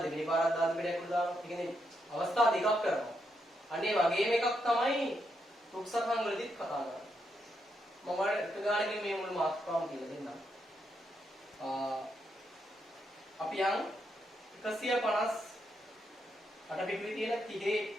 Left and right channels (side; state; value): both; normal; correlation 0.80